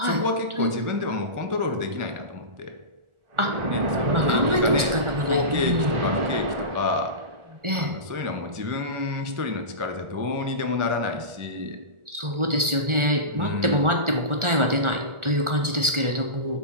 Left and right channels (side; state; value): left; late; 1.4 ms